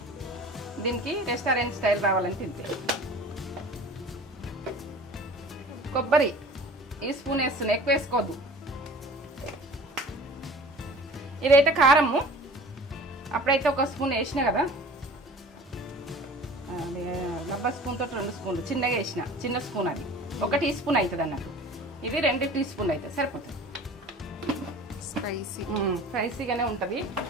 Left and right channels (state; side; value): normal; both; correlation 0.43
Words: దీనికి రెస్టారెంట్ స్టైల్ రావాలని తింటే. కొబ్బరి ఈ స్పూన్ వేస్తున్నా, ఎక్కువ వేసుకోవద్దు. ఇదైతే కారము అప్పుడైతే 1 స్పూన్ వేసినా కదా, డబ్బా స్పూన్ తోటి 2 స్పూన్లు చిన్నగా వేసిన, చిన్న స్పూన్ అది 1 టీ స్పూన్ అవుతుంది అన్నట్టు. ఇది 2 టీ స్పూన్లు అయితే సరిపోతుంది. స్పైసీగానే ఉంటుంది.